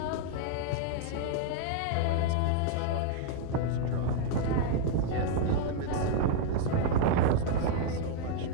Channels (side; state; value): both; different; correlation 0.00